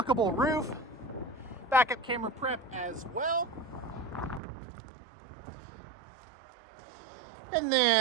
roof. Backup camera prep as well. And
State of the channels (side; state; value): left; drops out; at 4.4 s